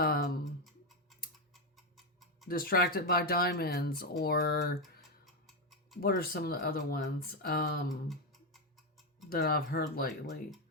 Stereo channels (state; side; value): normal; both; correlation 0.07